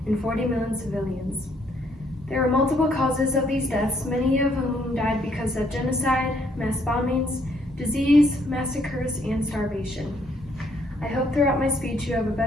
and 40 million civilians. There were multiple causes of these deaths, many of whom died because of genocide, mass bombings, disease, massacres, and starvation. I hope throughout my speech you have a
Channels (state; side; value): normal; both; correlation 0.69